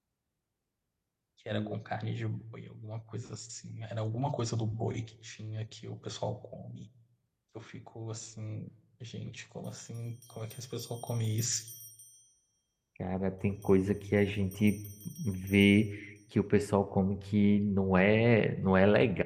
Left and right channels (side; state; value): both; identical; correlation 1.00